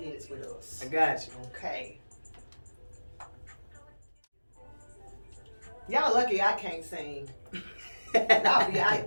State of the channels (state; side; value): inverted; both; correlation -1.00